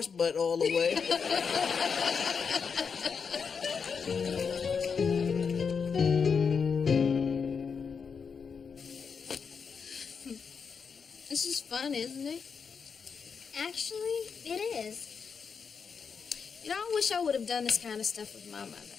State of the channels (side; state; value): right; quieter; 6.0 dB